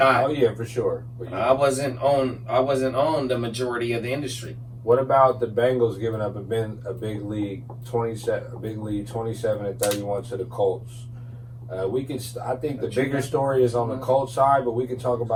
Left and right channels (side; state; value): both; identical; correlation 1.00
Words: Oh yeah, for sure. But I wasn't on the majority of the industry. What about the Bengals giving up a big lead 27 and 31 to the Colts? I think the bigger story is on the Colts side, but we can talk